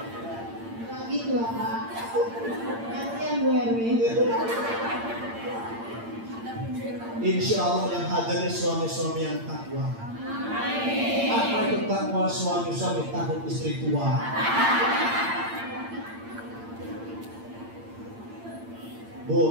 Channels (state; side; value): late; left; 8.8 ms